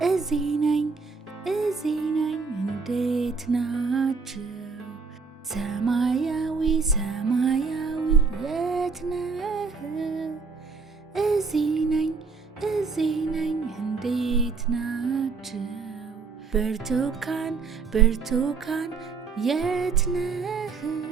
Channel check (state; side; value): quieter; left; 4.9 dB